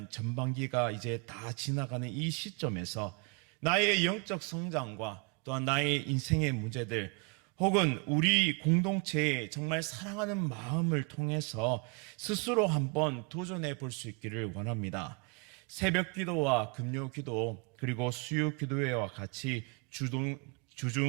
전반기가 이제 다 지나가는 이 시점에서 나의 영적 성장과 또한 나의 인생의 문제들 혹은 우리 공동체의 정말 사랑하는 마음을 통해서 스스로 한번 도전해 볼 수 있기를 원합니다. 새벽 기도와 금요 기도 그리고 수요 기도회와 같이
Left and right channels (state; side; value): quieter; left; 31.0 dB